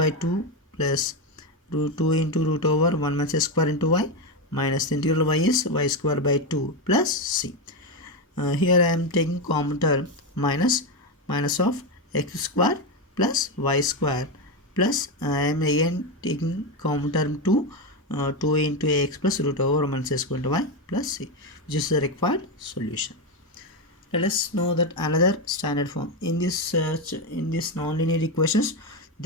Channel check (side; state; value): both; normal; correlation 0.11